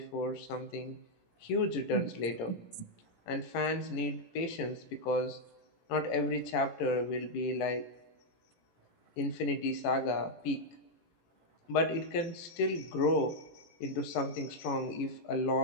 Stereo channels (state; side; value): late; right; 18 ms